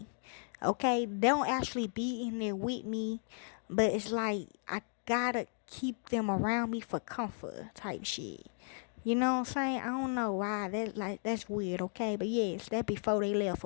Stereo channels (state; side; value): silent; right; 54 dB below the other